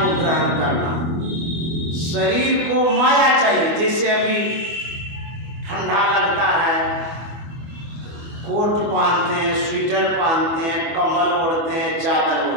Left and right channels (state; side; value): late; left; 24 ms